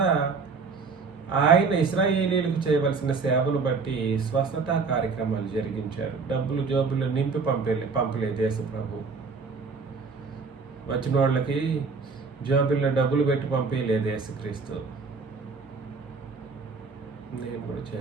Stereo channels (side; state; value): left; quieter; 4.7 dB